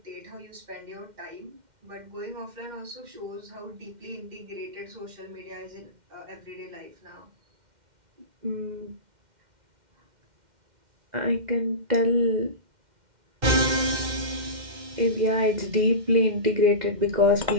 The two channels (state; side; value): late; left; 2.1 ms